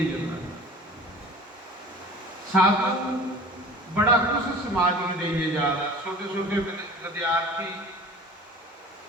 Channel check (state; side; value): normal; both; correlation 0.42